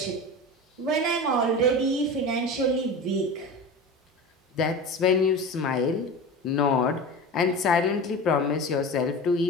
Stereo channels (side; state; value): both; normal; correlation 0.30